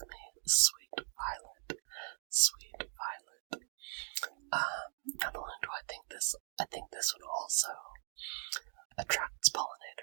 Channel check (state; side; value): silent; left; 52 dB below the other